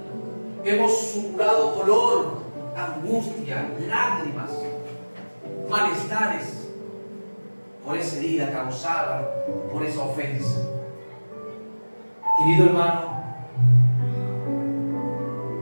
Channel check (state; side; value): inverted; both; correlation -1.00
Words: supurado dolor, angustia, lágrimas, malestares por esa herida causada por esa ofensa. Querido hermano,